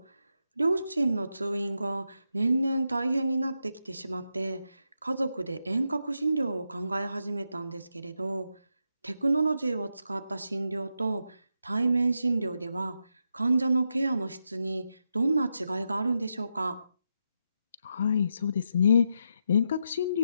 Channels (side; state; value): both; inverted; correlation -0.84